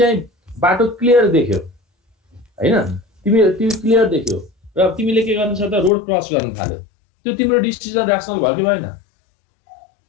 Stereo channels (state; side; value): drops out; right; at 5.9 s